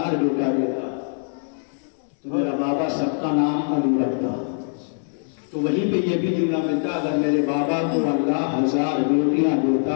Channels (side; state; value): right; silent; digital silence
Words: بیٹا دیتا تو میرا بابا سب کا نام علی رکھتا۔ تو وہیں پہ یہ بھی جملہ ملتا اگر میرے بابا کو اللہ 1000 بیٹیاں